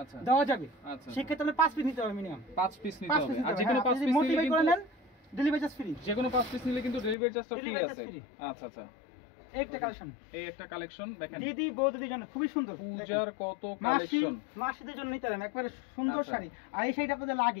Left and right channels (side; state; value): right; drops out; at 7.2 s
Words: আচ্ছা দেওয়া যাবে। আচ্ছা সেক্ষেত্রে আপনি 5 পিস নিতে হবে, মিনিমাম 5 পিস নিতে হবে। আর যে কোনো 5 পিস মোটিভেট নিলে করে কিন্তু নেন, ডেলিভারি চার্জ ফ্রি। যে কোনো 5 পিস নিলে কিন্তু ডেলিভারি চার্জটা ফ্রি আছে। আচ্ছা আচ্ছা, একটা কালেকশন, এই একটা কালেকশন দেখেন, দিদি বৌদিদের জন্য খুবই সুন্দর। পূজার কত কালেকশন, মাসিদের জন্য নিতে পারেন, একবারে সুন্দর শাড়ি। আর এই শাড়িটা আপনাদের